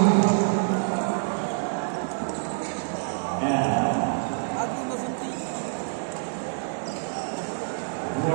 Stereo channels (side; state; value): left; silent; digital silence